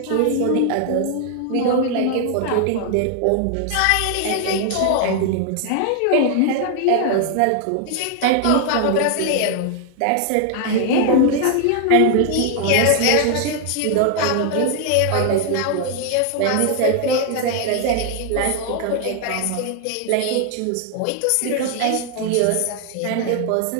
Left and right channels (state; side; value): different; both; correlation 0.00